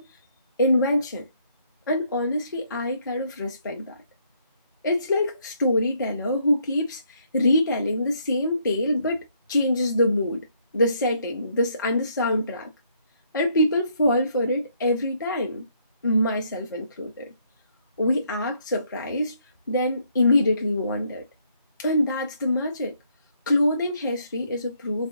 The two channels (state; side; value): inverted; both; correlation -0.70